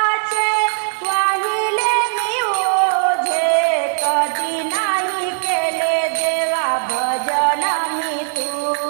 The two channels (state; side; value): silent; left; digital silence